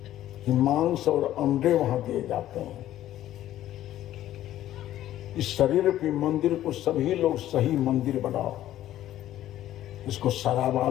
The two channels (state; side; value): quieter; right; 13.1 dB